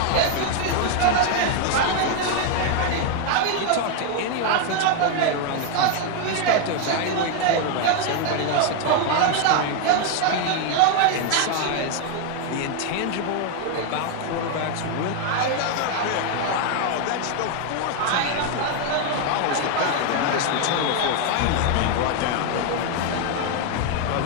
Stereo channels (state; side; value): different; both; correlation 0.01